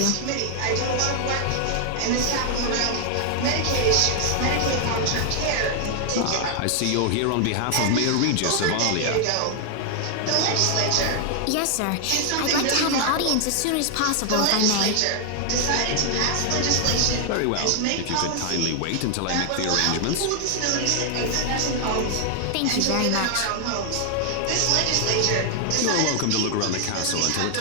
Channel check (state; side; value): different; both; correlation 0.00